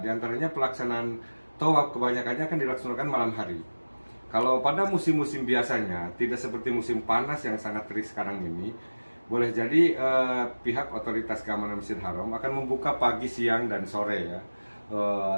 antaranya pelaksanaan tawaf kebanyakannya akan dilaksanakan malam hari. Kalau pada musim-musim biasanya, tidak seperti musim panas yang sangat terik sekarang ini, boleh jadi pihak otoritas keamanan Masjidil Haram akan membuka pagi, siang, dan sore ya.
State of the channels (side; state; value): both; inverted; correlation -1.00